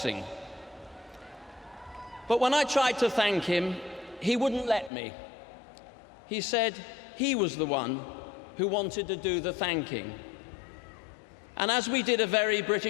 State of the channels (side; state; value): right; drops out; at 4.9 s